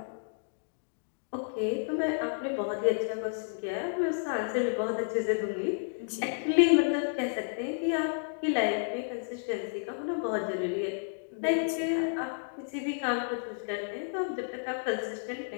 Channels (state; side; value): silent; right; digital silence